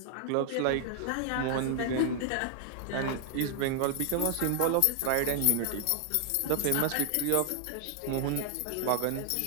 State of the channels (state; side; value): different; both; correlation 0.00